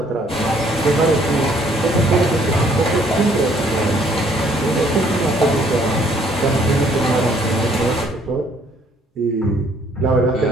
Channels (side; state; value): both; normal; correlation 0.63